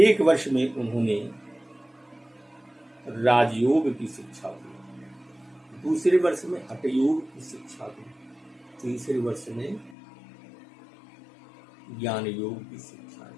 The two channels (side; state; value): right; drops out; at 10.0 s